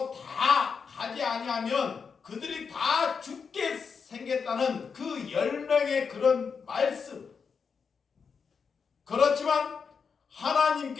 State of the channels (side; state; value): right; quieter; 5.8 dB